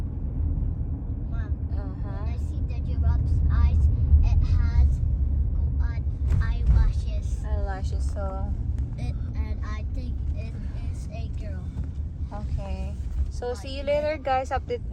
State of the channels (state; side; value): identical; both; correlation 1.00